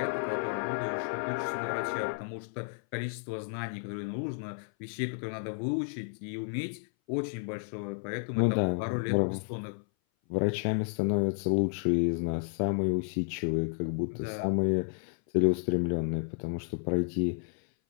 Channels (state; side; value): silent; right; 57 dB below the other